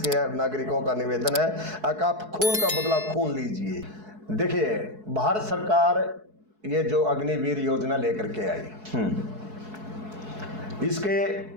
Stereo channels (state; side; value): late; left; 4.7 ms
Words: नागरिकों का निवेदन है कि आप खून का बदला खून लीजिए। देखिए, भारत सरकार ये जो अग्निवीर योजना लेकर के आई, इसके